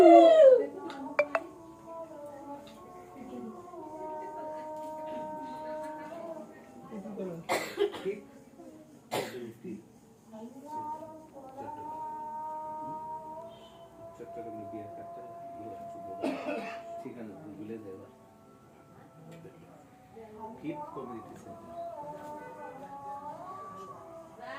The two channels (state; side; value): identical; both; correlation 1.00